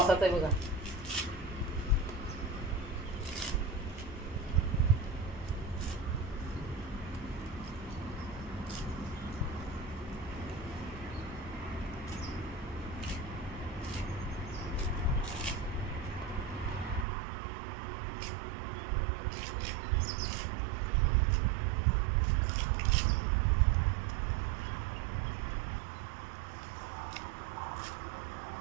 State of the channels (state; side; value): drops out; left; at 17.1 s